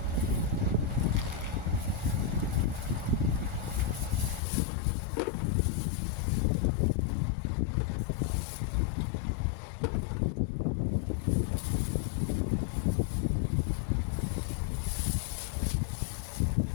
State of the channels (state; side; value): drops out; right; at 4.4 s